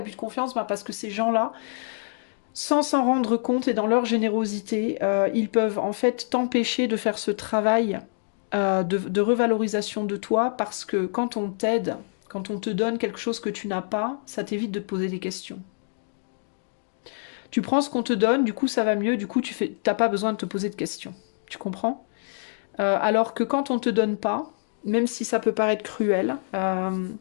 de confiance? Parce que ces gens-là, sans s'en rendre compte et dans leur générosité, ils peuvent en fait t'empêcher de faire ce travail de revalorisation de toi parce que quand on t'aide, quand on te donne quelque chose que tu n'as pas, ça t'évite de te poser des questions. Tu prends ce qu'on te donne, du coup ça va mieux, du coup t'as pas besoin de te poser de questions. Tu comprends? Alors que quand on te donne pas, même si ça peut paraître cruel,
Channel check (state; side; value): silent; right; digital silence